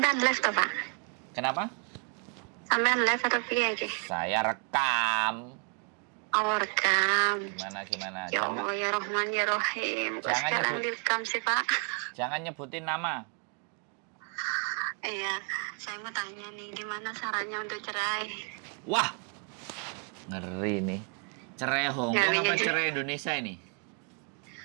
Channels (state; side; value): quieter; left; 39.6 dB